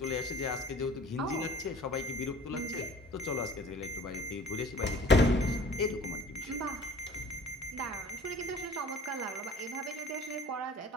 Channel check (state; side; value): normal; both; correlation 0.46